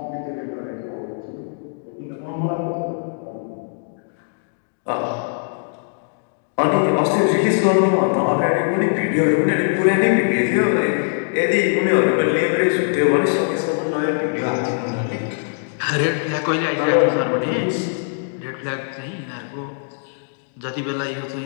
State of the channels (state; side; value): silent; right; digital silence